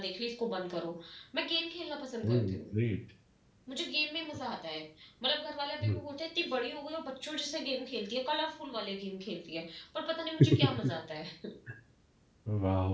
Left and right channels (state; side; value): identical; both; correlation 1.00